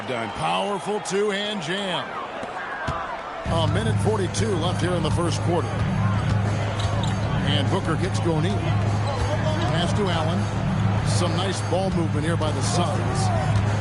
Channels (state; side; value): identical; both; correlation 1.00